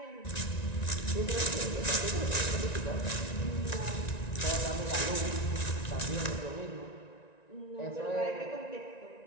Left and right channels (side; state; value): right; late; 1.9 ms